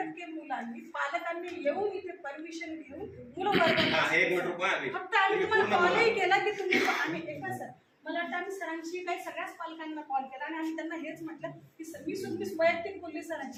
मुलांनी, पालकांनी येऊन इथे परमिशन घेऊन मुलं वर्गात. फक्त आम्ही तुम्हाला कॉलही केला की तुम्ही आम्ही एका सर, मला वाटतं आम्ही सरांशी काही सगळ्याच पालकांना कॉल केला आणि आम्ही त्यांना हेच म्हटलं की सर, मी वैयक्तिक बोलली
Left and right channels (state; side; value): identical; both; correlation 1.00